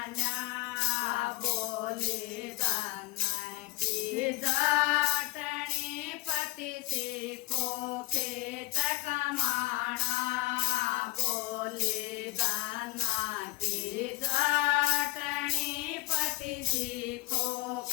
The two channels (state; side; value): quieter; right; 19.7 dB